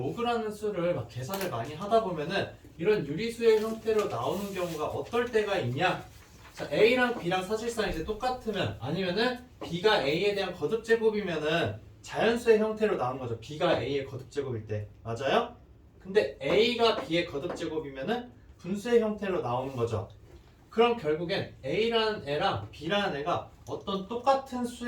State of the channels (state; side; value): identical; both; correlation 1.00